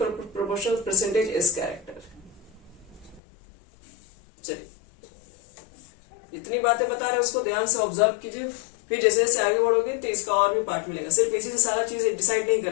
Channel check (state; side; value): drops out; right; at 3.2 s